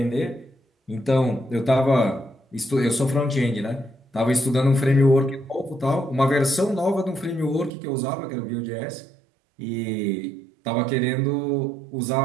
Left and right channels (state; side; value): drops out; left; at 7.7 s